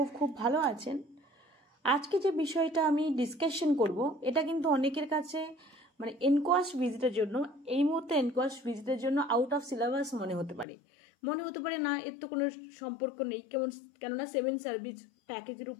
খুব ভালো আছেন। আজকে যে বিষয়টা আমি ডিসকাশন করব, এটা কিন্তু অনেকের কাছে মানে এনকোয়াস্ট ভিজিটের জন্য, এই মুহূর্তে এনকোয়াস্ট ভিজিটের জন্য আউট অফ সিলেবাস মনে হতে পারে না, এর তো কোনো সম্পর্ক নেই। কেননা 7 সার্ভিস প্যাকেজের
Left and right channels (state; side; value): drops out; right; at 10.7 s